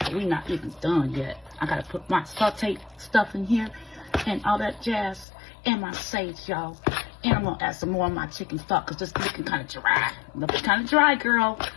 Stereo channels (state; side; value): drops out; right; at 5.2 s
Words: We're not even done yet. I gotta put my sauteed stuff in here and all that jazz and my sage, y'all. And I'm gonna add some more of my chicken stock because this looking kind of dry. Looking kind of dry, girl.